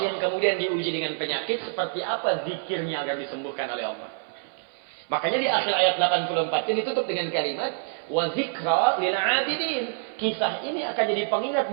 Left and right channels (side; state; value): left; silent; 58 dB below the other